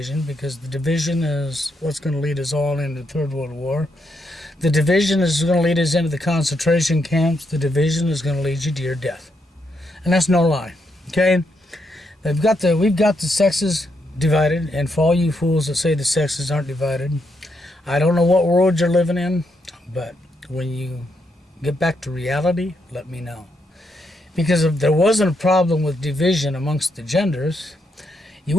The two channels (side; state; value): both; normal; correlation 0.79